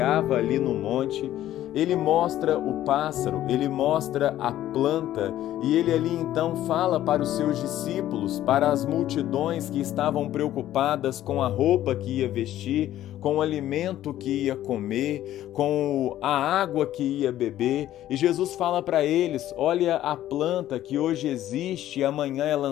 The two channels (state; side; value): quieter; right; 13.0 dB